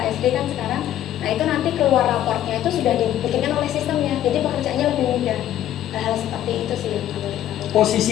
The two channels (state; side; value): quieter; right; 12.1 dB